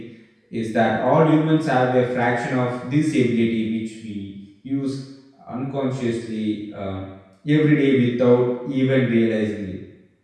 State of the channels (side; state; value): both; identical; correlation 1.00